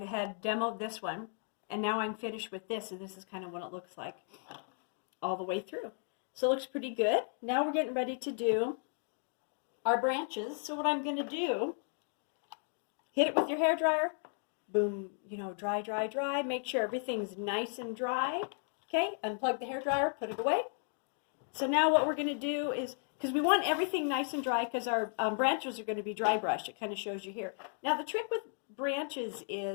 demoed this one, and now I'm finished with this, and this is kind of what it looks like all the way through. So it looks pretty good. Now we're getting ready to do our branches. So what I'm going to do, hit it with your hairdryer. Boom, dry, dry, dry. Make sure everything's nice and dry. Okay, unplug the hairdryer, put it away. So now what we're going to do is, because we want everything nice and dry, because our branches are going to be dry brushed. It kind of shows you here. Now the trick with branches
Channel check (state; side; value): silent; right; 55 dB below the other